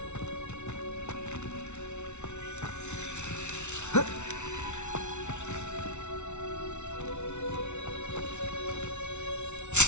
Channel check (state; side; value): late; right; 0.82 ms